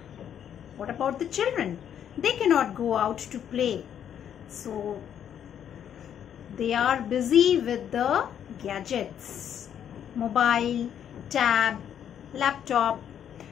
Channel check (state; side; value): quieter; right; 9.3 dB